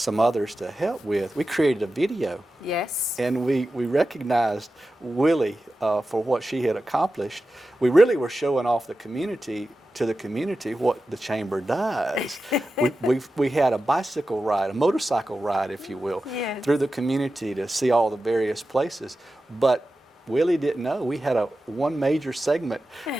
others to help with. We created a video. Yes. And we recognized Willie for what she had accomplished. We really were showing off to the community what the chamber does. we had a bicycle ride, a motorcycle ride, if you will, yes. through the community to see all the various places. But Willie didn't know we had one major segment.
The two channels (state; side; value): normal; both; correlation 0.93